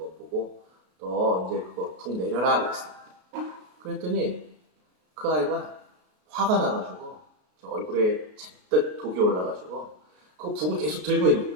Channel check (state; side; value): late; left; 33 ms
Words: 보고 너 이제 그거 북 내려라 그랬어요. 그랬더니 그 아이가 화가 나가지고 얼굴에 잔뜩 독이 올라가지고 그 북을 계속 들고 있는